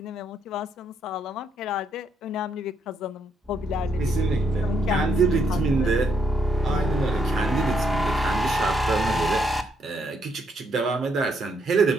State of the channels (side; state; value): both; normal; correlation 0.74